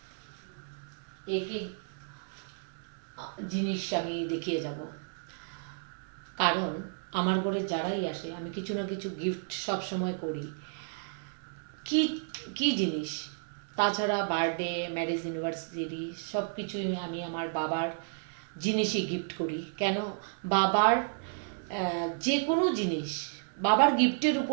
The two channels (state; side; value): silent; left; digital silence